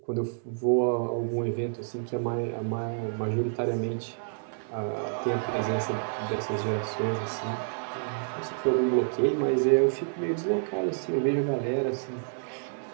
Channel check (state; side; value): silent; left; 59 dB below the other